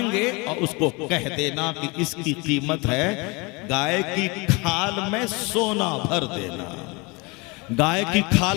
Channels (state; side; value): quieter; right; 27.2 dB